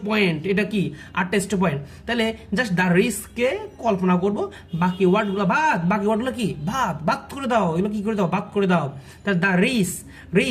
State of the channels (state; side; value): identical; both; correlation 1.00